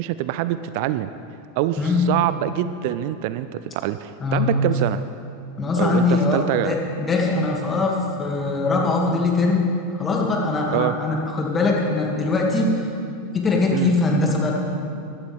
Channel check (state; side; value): normal; both; correlation 0.27